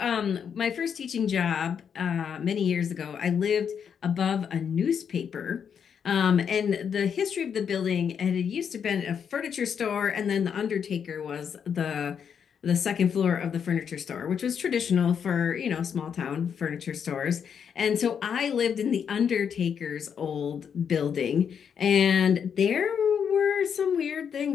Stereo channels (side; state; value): right; quieter; 7.4 dB